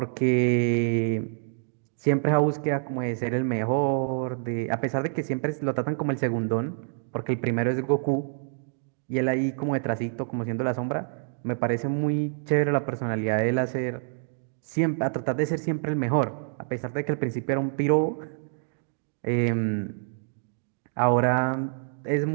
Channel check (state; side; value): silent; left; digital silence